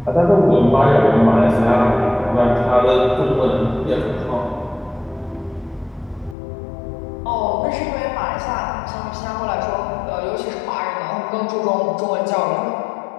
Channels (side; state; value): right; drops out; at 6.4 s